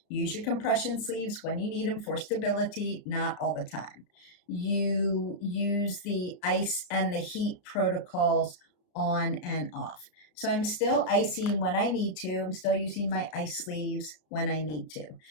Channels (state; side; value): late; right; 33 ms